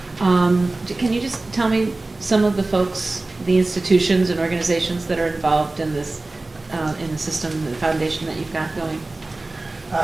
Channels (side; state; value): left; quieter; 3.1 dB